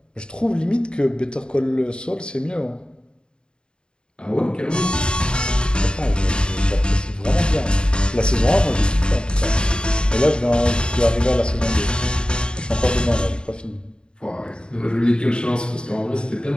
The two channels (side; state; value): right; late; 0.050 ms